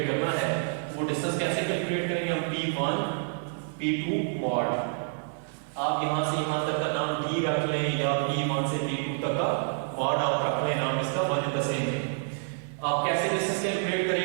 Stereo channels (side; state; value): left; silent; digital silence